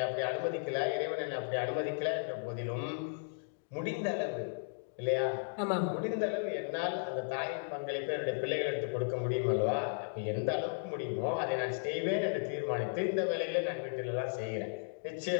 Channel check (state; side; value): silent; right; digital silence